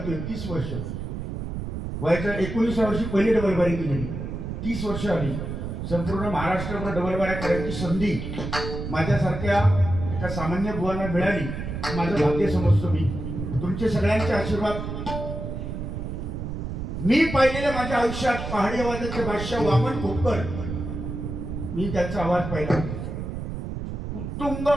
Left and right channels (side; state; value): right; noise; rumble, 5 dB below the sound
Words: 30 वर्ष वयाच्या 19व्या वर्षी पहिली डबलबारी केली. 30 वर्ष आली. संपूर्ण महाराष्ट्रभर डबलबाऱ्या करायची संधी माझ्यासारख्या एका सामान्य बुवांना मिळाली. माझं भाग्य समजतो मी. तुमचे सगळ्यांचे आशीर्वाद. मी पाहिलेल्या माझ्या आयुष्यात पहाडी आवाजाचे बादशाह वामन खोपकर, मी त्यांचा आवाज पाहिला. उत्तुंग